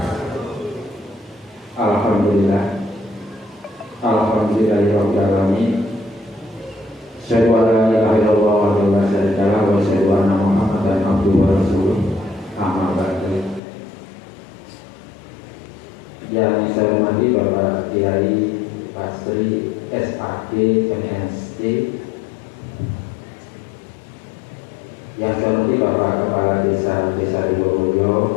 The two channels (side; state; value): right; drops out; at 13.6 s